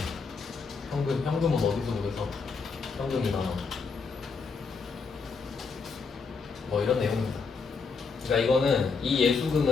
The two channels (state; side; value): quieter; right; 5.0 dB